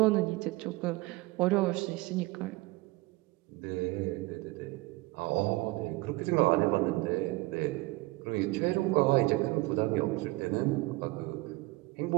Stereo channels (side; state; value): left; quieter; 21.7 dB